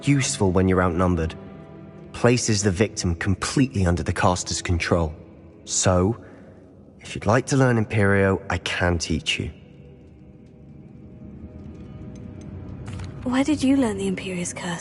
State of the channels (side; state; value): both; identical; correlation 1.00